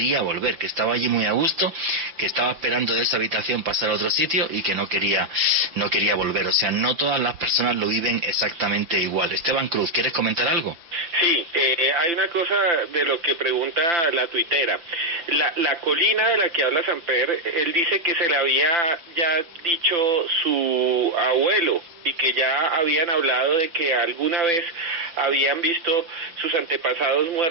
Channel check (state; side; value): late; left; 5.9 ms